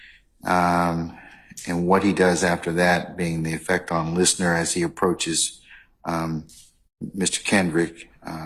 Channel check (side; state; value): both; identical; correlation 1.00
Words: and what he does after that, being the effect on listener as he approaches Mr. Kendrick